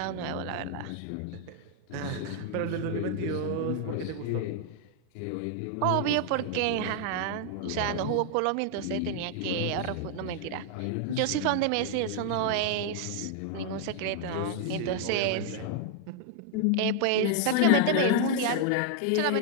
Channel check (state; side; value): different; both; correlation 0.00